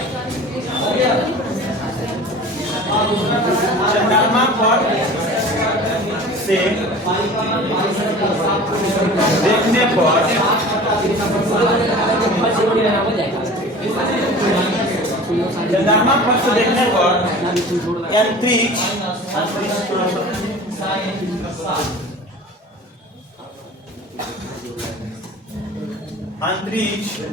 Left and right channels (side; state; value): both; normal; correlation 0.40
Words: चंद्रमा पर से देखने पर चंद्रमा पर से देखने पर अंतरिक्ष